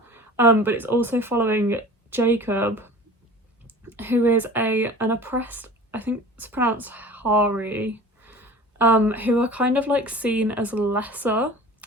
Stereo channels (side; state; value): both; normal; correlation 0.40